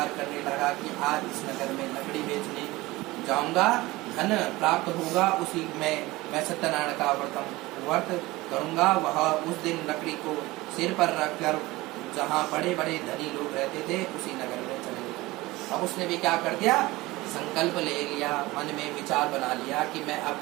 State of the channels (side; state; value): left; quieter; 20.0 dB